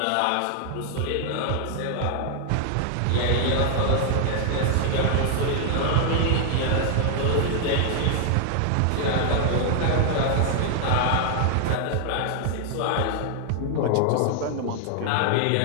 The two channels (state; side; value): different; both; correlation 0.00